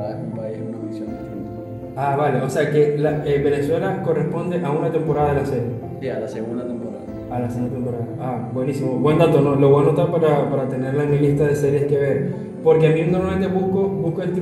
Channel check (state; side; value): identical; both; correlation 1.00